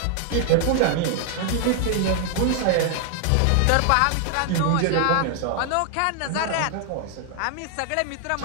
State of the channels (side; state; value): both; different; correlation 0.00